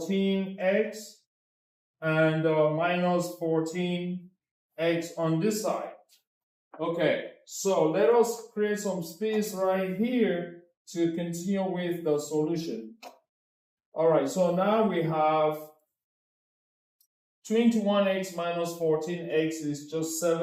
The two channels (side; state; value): both; identical; correlation 1.00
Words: and minus 14x on this side. Okay, so let us create some space right here to continue with the solution. All right, so now we have 21x minus 14x is just